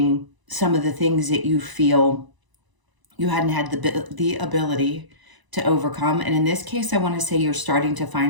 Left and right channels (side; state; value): left; late; 1.0 ms